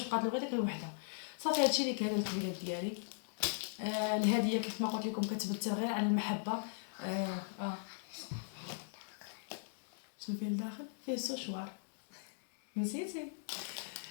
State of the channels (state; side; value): silent; right; digital silence